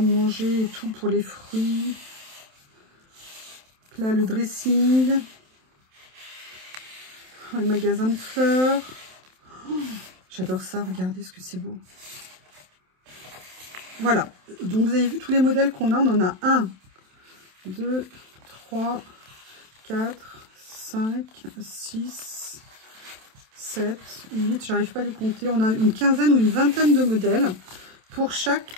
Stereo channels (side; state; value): left; late; 27 ms